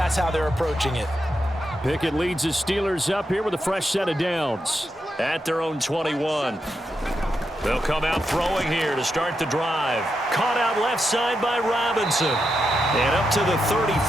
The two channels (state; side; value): normal; both; correlation 0.85